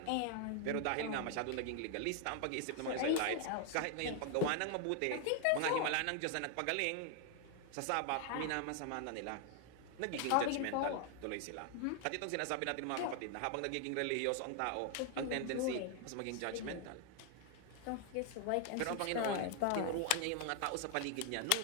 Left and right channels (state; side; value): different; both; correlation 0.00